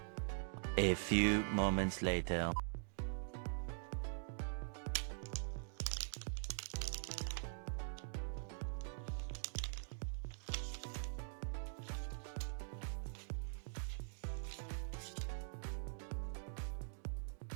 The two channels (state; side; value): silent; left; digital silence